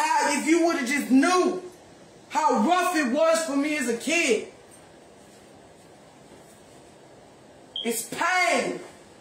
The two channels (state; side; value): identical; both; correlation 1.00